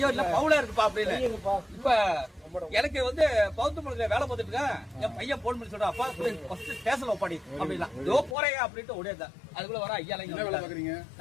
இல்ல பவுலா இருக்குப்பா அப்படின்னு. இப்ப எனக்கு வந்து பௌத்தமலத்துல வேலை பார்த்துட்டு இருக்கேன். என் பையன் போன் பண்ணி சொல்றான், அப்பா ஸ்டேஷன்ல ஒப்பாடி அப்படின்னா இதோ போறேன் அப்படின்ட்டு ஓடியா. அதுக்குள்ள வர ஐயா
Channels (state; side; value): drops out; right; at 8.3 s